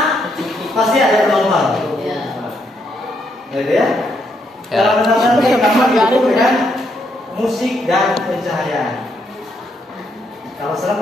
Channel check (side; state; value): both; normal; correlation 0.76